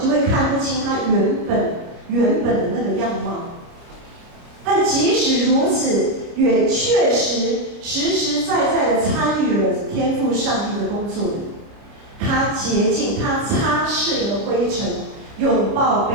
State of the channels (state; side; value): late; left; 29 ms